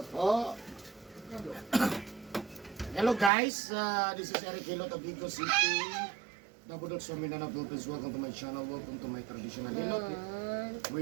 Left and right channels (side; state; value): left; drops out; at 3.3 s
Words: Hello guys, this is Eric Hilot of Vigo City. Nabudot sa Mindanao Philippines. Welcome to my channel. Welcome to my traditional Hilot